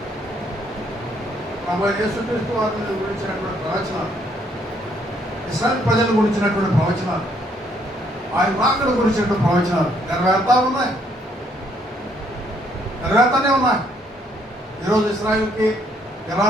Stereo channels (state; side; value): normal; both; correlation 0.69